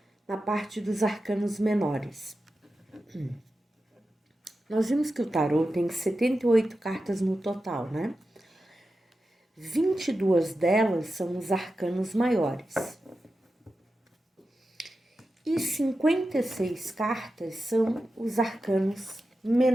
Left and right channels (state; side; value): normal; both; correlation 0.91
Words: na parte dos arcanos menores. Nós vimos que o tarô tem 78 cartas no total, né? 22 delas são os arcanos maiores. E 56 cartas são os arcanos